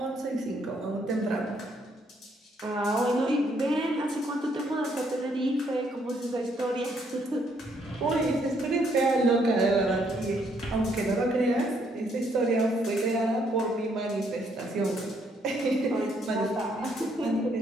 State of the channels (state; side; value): normal; both; correlation 0.70